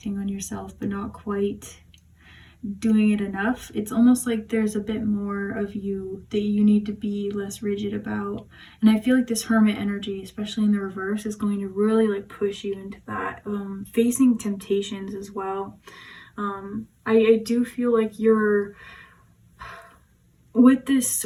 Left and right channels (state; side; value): identical; both; correlation 1.00